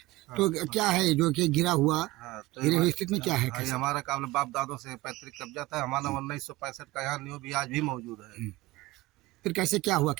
तो क्या है जो कि गिरा हुआ, गिरे हुई स्थिति में क्या है? कैसे? हमारा काबले बाप दादों से पैतृक कब्जा था हमारा। 1965 का यहाँ न्यू भी आज भी मौजूद है। फिर कैसे क्या हुआ,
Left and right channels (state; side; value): quieter; left; 19.4 dB